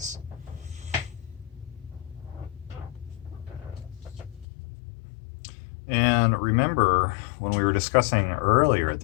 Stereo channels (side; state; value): right; drops out; at 4.5 s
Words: And remember, when we were discussing earlier at